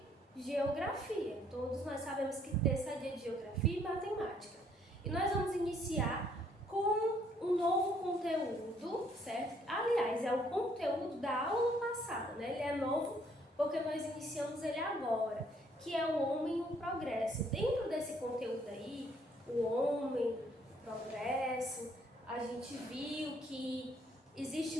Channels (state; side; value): normal; both; correlation 0.66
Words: geografia. Todos nós sabemos que terça é dia de geografia e matemática. E nós vamos iniciar com um novo conteúdo, certo? Aliás, é o conteúdo da aula passada, né? Ele é novo porque nós iniciamos ele agora, que é o homem e o progresso. Dentro desse conteúdo aí, o homem, o progresso, a gente viu que